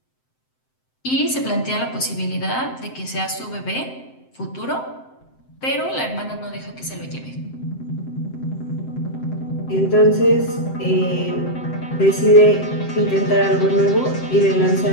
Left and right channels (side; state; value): right; late; 7.7 ms